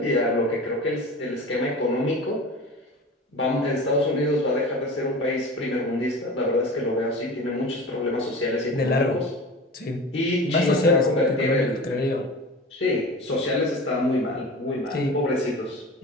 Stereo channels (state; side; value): normal; both; correlation 0.34